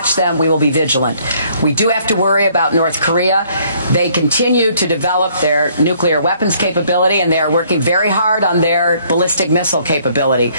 them. We will be vigilant. We do have to worry about North Korea. They continue to develop their nuclear weapons capability, and they are working very hard on their ballistic missile capability.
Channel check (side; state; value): both; inverted; correlation -0.63